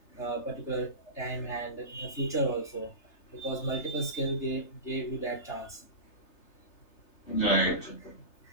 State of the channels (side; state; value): right; late; 3.3 ms